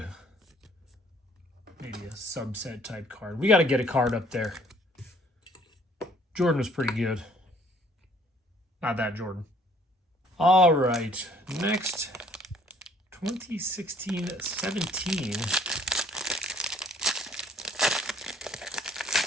maybe a subset type card, we got to get a card up there. Jordan was pretty good. Not that Jordan. All right, next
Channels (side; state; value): both; normal; correlation 0.60